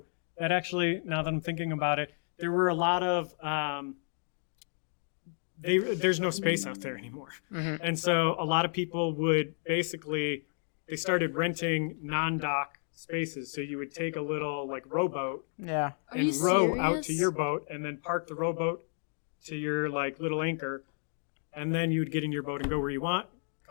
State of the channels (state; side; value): silent; right; 57 dB below the other